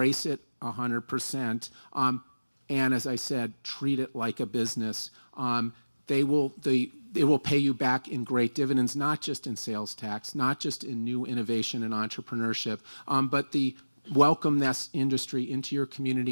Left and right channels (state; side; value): inverted; both; correlation -1.00